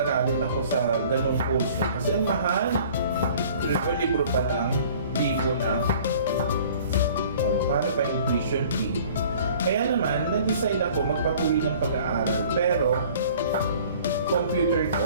ako sa ganong kurso. Kasi ang mahal. Libro pa lang, libo na. O, paano pa yung tuition fee? Kaya naman, nag-decide ako magpatuloy ng pag-aaral. Pero, computer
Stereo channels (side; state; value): both; inverted; correlation -0.50